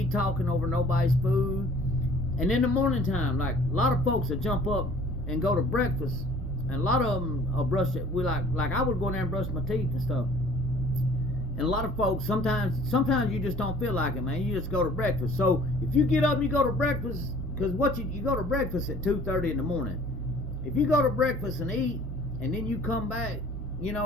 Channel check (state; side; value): normal; both; correlation 0.52